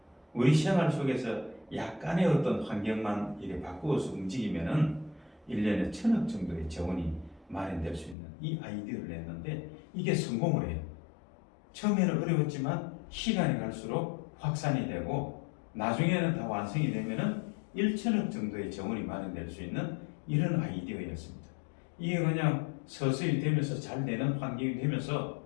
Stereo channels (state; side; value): drops out; right; at 8.2 s